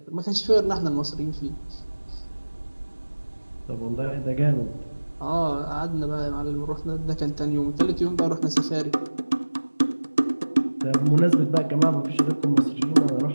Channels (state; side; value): inverted; both; correlation -1.00